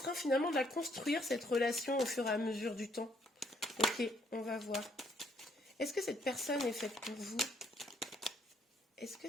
finalement de la construire, cette relation, au fur et à mesure du temps. Ok, on va voir. Est-ce que cette personne est faite pour vous? Est-ce que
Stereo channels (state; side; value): normal; both; correlation 0.68